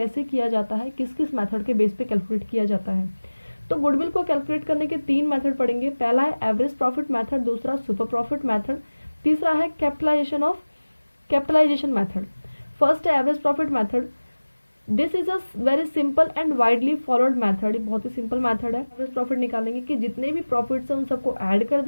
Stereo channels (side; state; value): both; inverted; correlation -1.00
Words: किया जाता है, किस किस मेथड के बेस पे कैलकुलेट किया जाता है। तो गुडविल को कैलकुलेट करने के 3 मेथड पढ़ेंगे। पहला है एवरेज प्रॉफिट मेथड, दूसरा सुपर प्रॉफिट मेथड, तीसरा है कैपिटलाइजेशन मेथड। फर्स्ट है average profit method. This is a very simple and widely followed method. बहुत ही सिंपल मेथड है। एवरेज प्रॉफिट निकालेंगे कि जितने भी प्रॉफिट्स हैं उन सबको ऐड कर